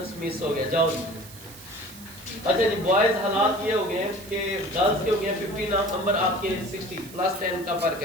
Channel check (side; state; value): right; noise; hiss, 18 dB below the sound